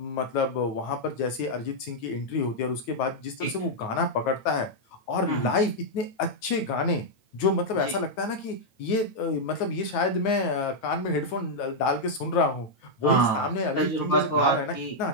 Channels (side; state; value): right; late; 9.5 ms